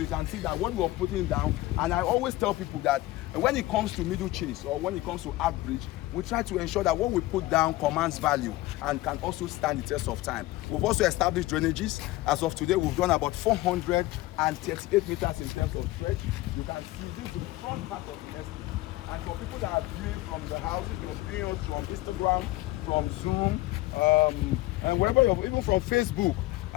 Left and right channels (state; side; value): quieter; right; 18.0 dB